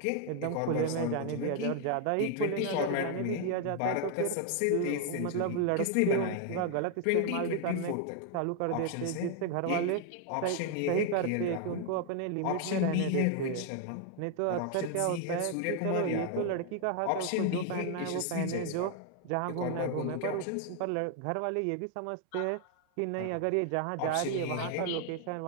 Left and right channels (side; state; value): both; different; correlation 0.00